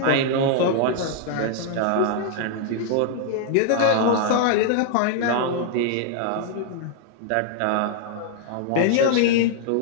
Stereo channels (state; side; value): different; both; correlation 0.00